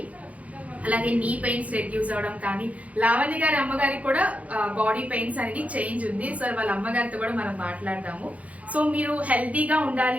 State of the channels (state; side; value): late; left; 0.068 ms